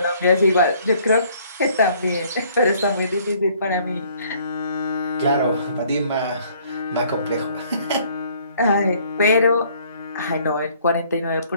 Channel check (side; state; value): both; inverted; correlation -0.61